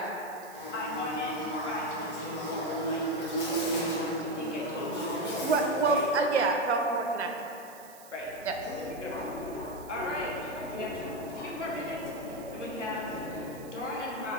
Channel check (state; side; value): noise; right; hiss, 20 dB below the sound